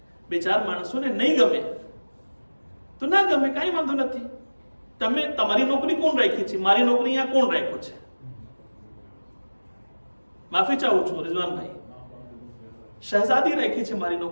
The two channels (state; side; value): inverted; both; correlation -1.00